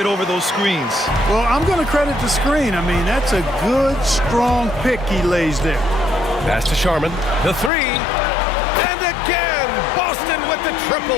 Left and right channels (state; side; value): drops out; right; at 7.7 s